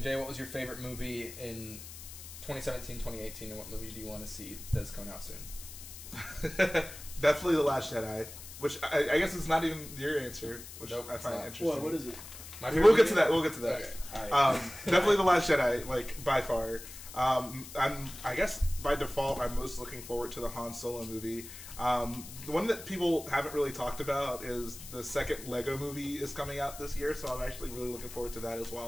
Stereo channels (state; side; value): noise; left; hiss, 13 dB below the sound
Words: Jay, what was your favorite movie in 2017, 2018, and what movie do you want to see that's coming out soon? Definitely The Last Jedi, which I guess is not even your answer, which Nope, I it's find not. interesting. What is it? My We'll get movie? to that. We'll get to that. Okay. Alright. Definitely The Last Jedi, like by far. I guess by default, I'm most looking forward to the Han Solo movie. The one that people haven't really talked about is the second Lego movie is coming out this year, so I'm actually really looking forward to that as